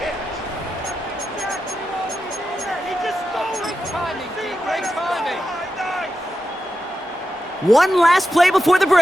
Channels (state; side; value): normal; both; correlation 0.89